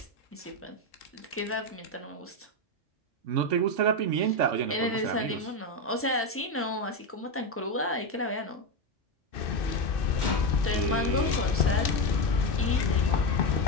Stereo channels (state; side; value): normal; both; correlation 0.11